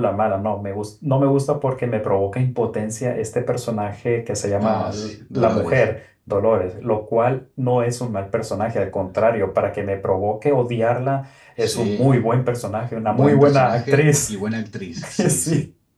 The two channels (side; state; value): both; identical; correlation 1.00